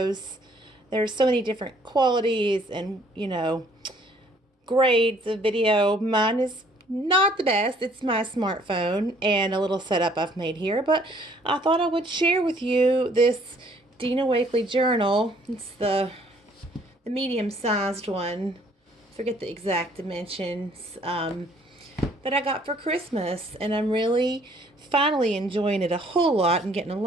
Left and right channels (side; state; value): both; normal; correlation 0.61